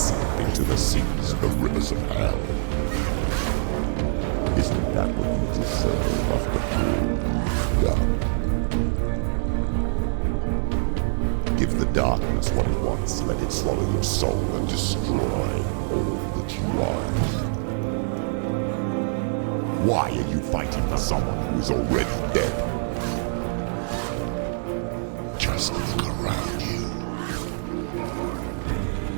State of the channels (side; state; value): left; silent; digital silence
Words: into the seas and the rivers of hell. Isn't that what you deserve after all you've done? Give the darkness what it wants, let it swallow your soul and destroy all that you are. Why are you fighting for someone who is already dead? Just look around you.